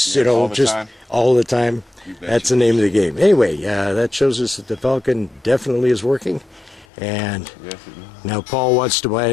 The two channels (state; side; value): drops out; right; at 6.9 s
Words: all the time. all the time? That's the name of the game. Anyway, that shows us that the Falcon definitely is working. And Yes, it is. now Paul wants to buy